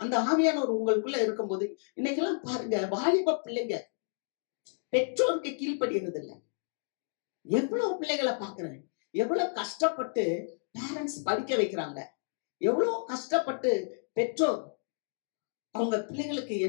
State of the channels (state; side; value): silent; right; digital silence